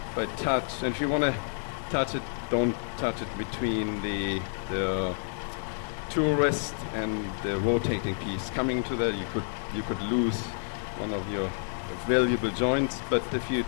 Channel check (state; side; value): silent; right; digital silence